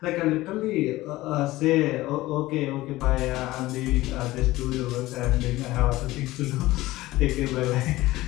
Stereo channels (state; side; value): quieter; right; 17.8 dB